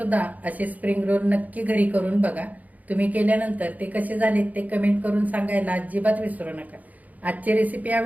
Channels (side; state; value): left; late; 0.077 ms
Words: असे स्प्रिंग रोल नक्की घरी करून बघा. तुम्ही केल्यानंतर ते कसे झालेत ते कमेंट करून सांगायला अजिबात विसरू नका. आजची रेसिपी